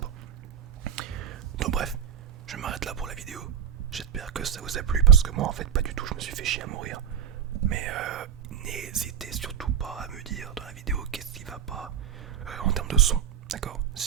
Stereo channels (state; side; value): quieter; left; 8.4 dB